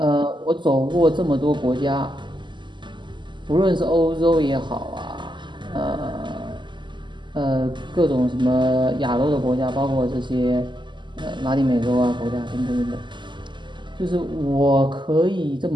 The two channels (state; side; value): late; left; 0.23 ms